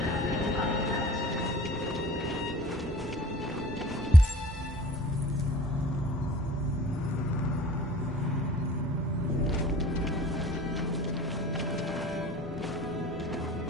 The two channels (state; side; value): normal; both; correlation 0.48